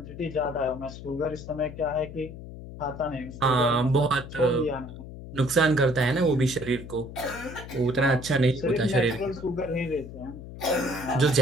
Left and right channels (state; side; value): noise; left; hum, 13 dB below the sound